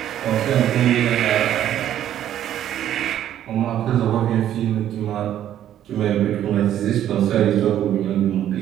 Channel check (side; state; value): left; quieter; 11.3 dB